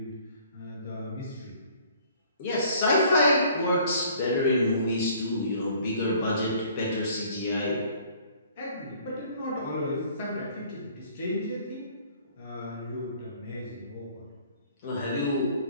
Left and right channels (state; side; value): inverted; both; correlation -0.55